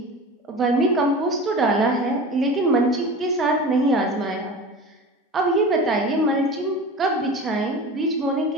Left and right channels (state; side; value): normal; both; correlation 0.33